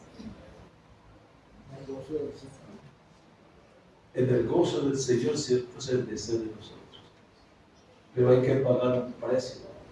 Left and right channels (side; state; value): both; identical; correlation 1.00